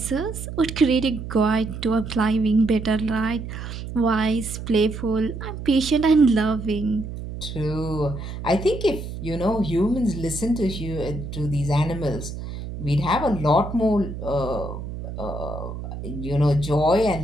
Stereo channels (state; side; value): noise; right; hum, 8 dB below the sound